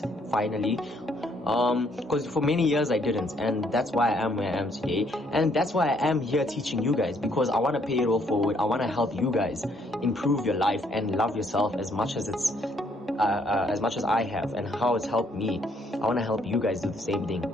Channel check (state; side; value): normal; both; correlation 0.68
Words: finally. Because for many years I didn't, and that's why I am where I am today, and that's why I am here teaching you guys, because I want to pay it all forward. I want to help you guys improve your life and love yourself as much as as much as I have, and how it's helped me. I want to help you guys do the same thing,